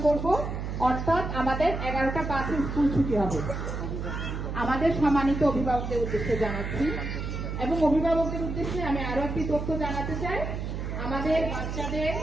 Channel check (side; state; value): right; noise; hum, 4 dB below the sound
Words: করব, অর্থাৎ আমাদের 11টা 5 স্কুল ছুটি হবে। আমাদের সম্মানিত অভিভাবকদের উদ্দেশ্যে জানাচ্ছি এবং অভিভাবকদের উদ্দেশ্যে আমি আরো একটি তথ্য জানাতে চাই। আমাদের বাচ্চাদের